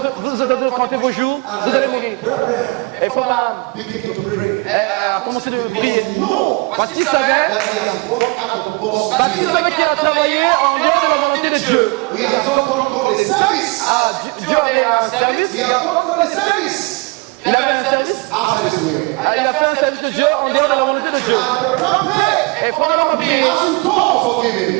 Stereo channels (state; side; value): quieter; left; 27.5 dB